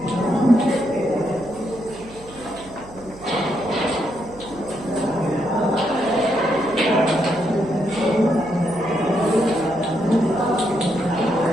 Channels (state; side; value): noise; right; hum, 19 dB below the sound